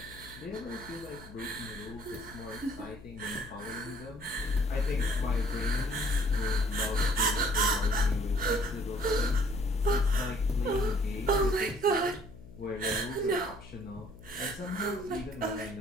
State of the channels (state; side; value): noise; left; hum, 18 dB below the sound